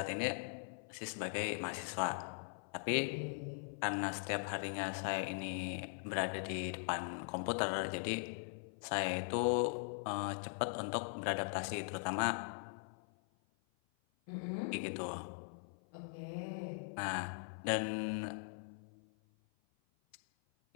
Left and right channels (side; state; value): right; silent; 51 dB below the other